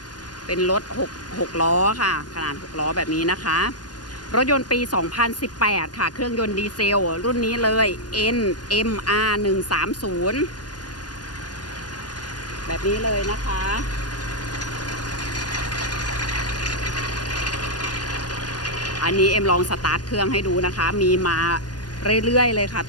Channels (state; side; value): late; right; 0.70 ms